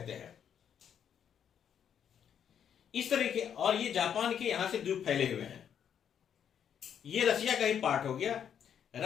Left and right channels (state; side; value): quieter; right; 8.5 dB